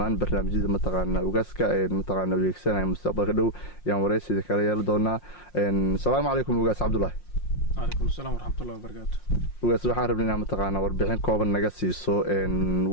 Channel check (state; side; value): late; right; 5.6 ms